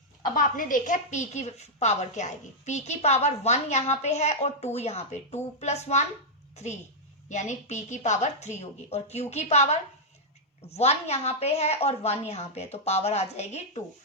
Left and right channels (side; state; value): both; normal; correlation -0.06